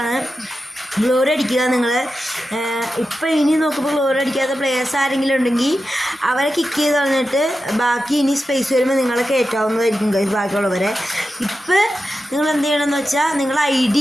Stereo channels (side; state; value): both; normal; correlation 0.91